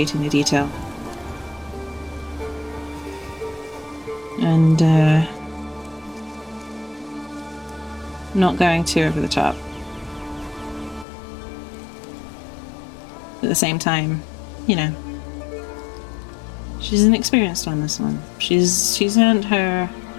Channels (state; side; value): drops out; right; at 11.1 s